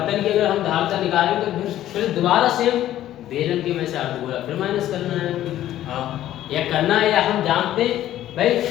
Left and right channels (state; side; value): quieter; right; 12.9 dB